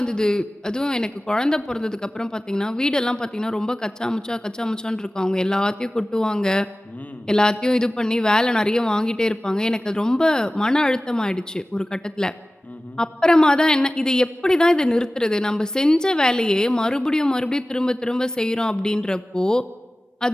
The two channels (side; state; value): both; normal; correlation 0.97